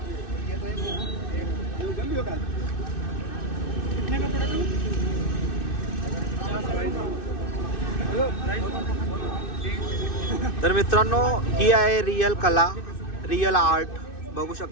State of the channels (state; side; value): late; right; 2.6 ms